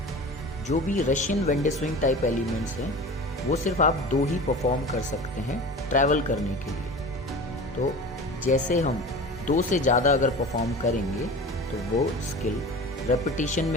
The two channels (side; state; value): both; normal; correlation 0.35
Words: जो भी Russian wende swing type elements हैं वो सिर्फ आप 2 ही परफॉर्म कर सकते हैं ट्रैवल करने के लिए। तो जैसे हम 2 से ज़्यादा अगर परफॉर्म करेंगे तो वो स्किल रेपिटेशन